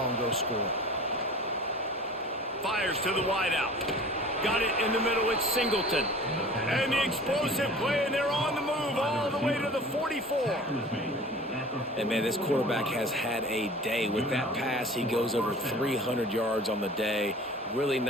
and go score. Fires to the wideout. Got it in the middle, it's Singleton. And the explosive play, and they're on the move all the way to the 44. And, man, this quarterback has had a day. With that pass, he goes over 300 yards on the day. Really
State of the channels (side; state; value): both; normal; correlation 0.43